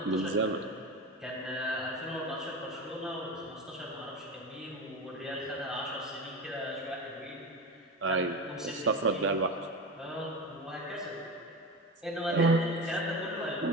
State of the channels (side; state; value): both; normal; correlation 0.25